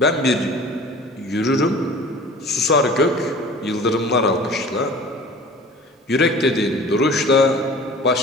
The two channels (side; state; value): both; normal; correlation 0.43